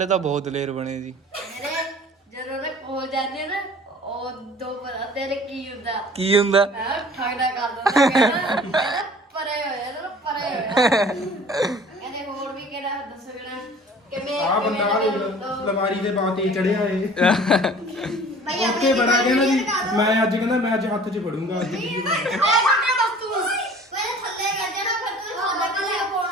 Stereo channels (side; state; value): both; normal; correlation 0.48